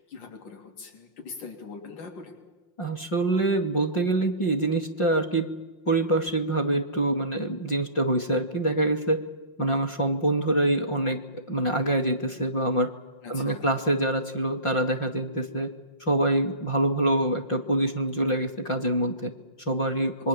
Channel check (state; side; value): late; right; 5.6 ms